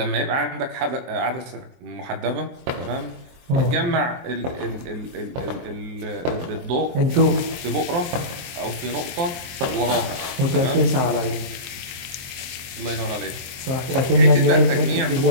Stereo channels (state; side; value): late; left; 23 ms